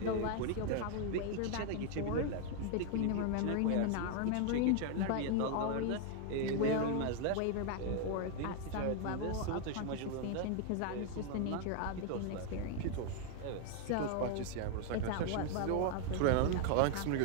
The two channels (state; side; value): different; both; correlation 0.00